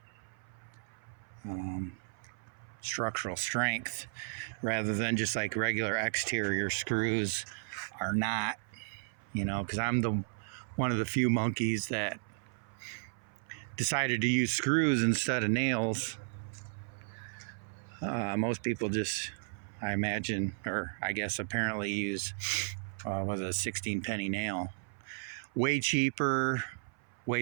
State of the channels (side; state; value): left; silent; 55 dB below the other